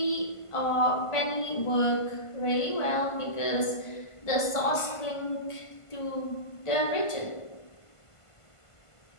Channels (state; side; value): late; right; 1.5 ms